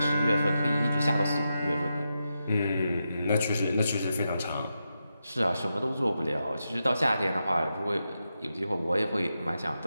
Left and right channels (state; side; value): inverted; both; correlation -0.87